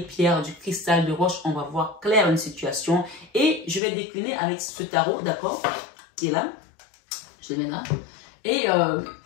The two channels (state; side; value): drops out; right; at 3.8 s